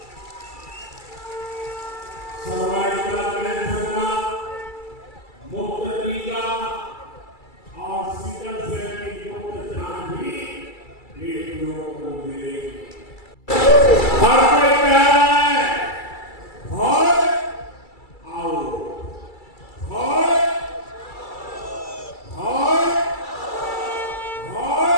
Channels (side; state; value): right; late; 2.3 ms